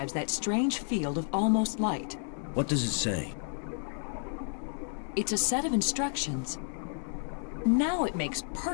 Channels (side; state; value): right; silent; 57 dB below the other